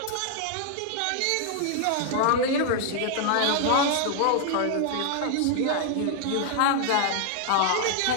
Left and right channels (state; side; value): different; both; correlation 0.00